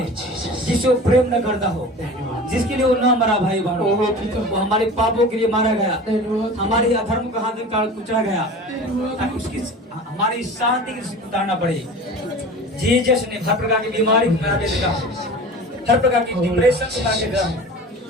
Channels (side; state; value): both; normal; correlation 0.37